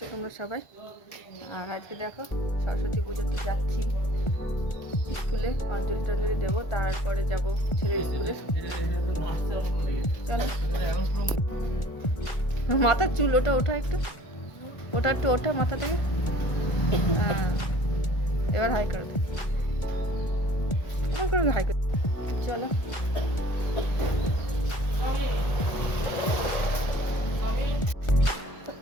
তোমরা সবাই? আর আজকে দেখো সরস্বতী পুজো তো যাচ্ছি স্কুলে, অঞ্জলি টঞ্জলি দেবো, তারপরে যাব ছেলের স্কুলে। চলো, মাথার চুল ওটা ওঠা একটু, ওটা একটু ওঠা মাথা থেকে। হ্যাঁ, এবার হাই করে দে, এমন করে হাই করে। চলো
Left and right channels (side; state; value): right; late; 1.4 ms